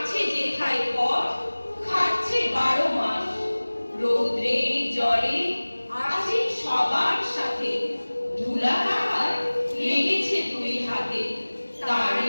যেথায় পথ, খাচ্ছে 12 মাস। রৌদ্রে জলে আছে সবার সাথে, ধুলা তাহার লেগেছে 2 হাতে।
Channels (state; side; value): inverted; both; correlation -1.00